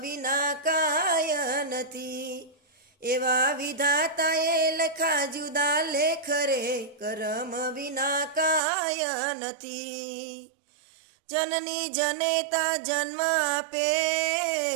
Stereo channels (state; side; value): drops out; left; at 8.6 s